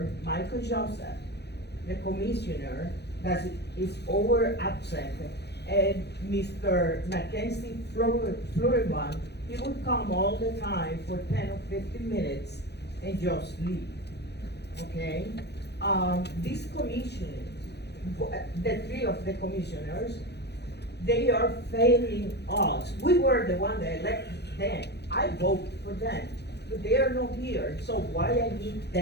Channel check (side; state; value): right; late; 0.48 ms